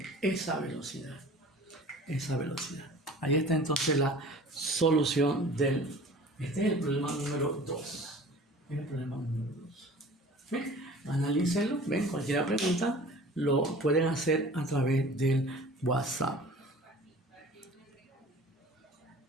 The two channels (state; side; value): normal; both; correlation 0.44